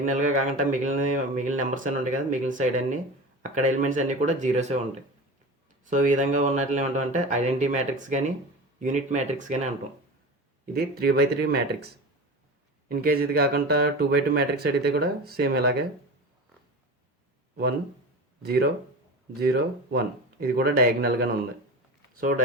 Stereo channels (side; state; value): both; normal; correlation 0.30